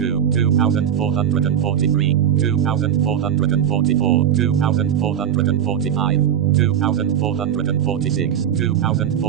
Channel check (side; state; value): left; quieter; 9.4 dB